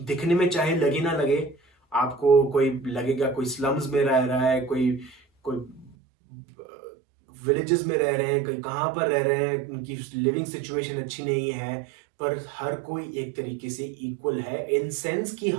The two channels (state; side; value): drops out; left; at 6.0 s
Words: में चाहे लगे ना लगे, आपको कोई लगेगा कोई स्लम्स में रह रहा है, कोई कोई विलेजेस में रह रहे हैं, कहीं कहाँ पर रह रहे हैं, उनकी लिविंग सिचुएशन अच्छी नहीं है, पर हर कोई एक तरीके से इक्वल है इन सेंस कि